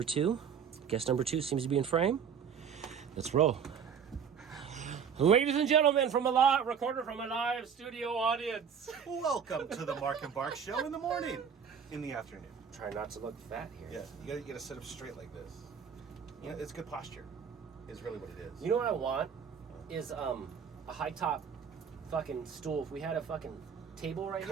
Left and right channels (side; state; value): left; quieter; 7.2 dB